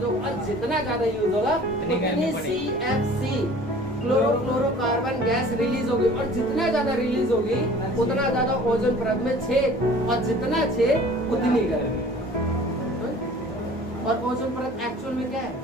होगा, और जितना ज्यादा यूज होगा उतनी CFC क्लोरोफ्लोरोकार्बन गैस रिलीज होगी, और जितना ज्यादा रिलीज होगी उतना ज्यादा ओजोन परत में छेद, और जितना छेद उतनी गर्मी। और ओजोन परत एक्चुअल में क्या है,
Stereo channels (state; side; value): normal; both; correlation 0.48